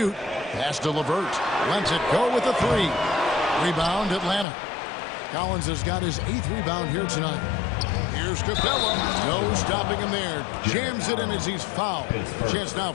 Pass to LeVert. Lets it go with a 3. Rebound Atlanta. Collins has got his 8th rebound here tonight. Here's Capella. No stopping him there. Jams it in as he's fouled. Chance now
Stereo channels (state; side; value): drops out; right; at 4.5 s